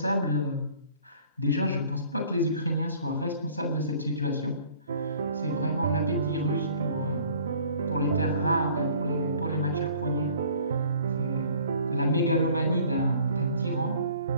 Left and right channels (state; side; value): inverted; both; correlation -0.54